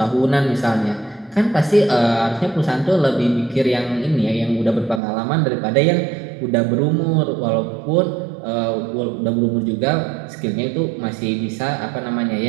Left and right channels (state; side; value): drops out; left; at 5.0 s